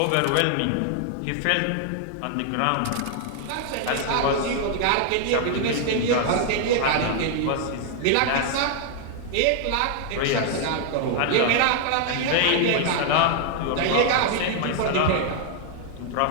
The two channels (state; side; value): different; both; correlation 0.00